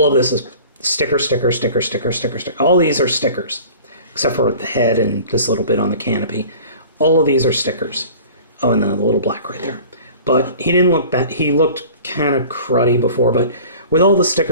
of this is sticker, sticker, sticker, sticker, sticker, sticker. All these are stickers, except for the head and this little bit on the canopy. All of these are stickers. Oh, and the little black right there. But he didn't look bad. He looked kind of cruddy before, but with all the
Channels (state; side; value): inverted; both; correlation -0.43